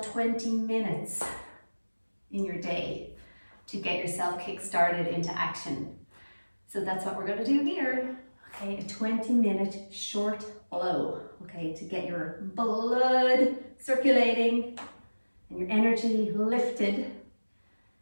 20 minutes in your day to get yourself kick-started into action. So that's what we're going to do here. Okay, a 20-minute short blow, okay, to get your blood circulating and your energy lifted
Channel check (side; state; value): both; inverted; correlation -1.00